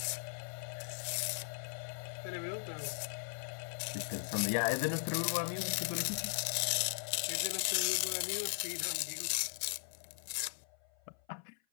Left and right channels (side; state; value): right; silent; 52 dB below the other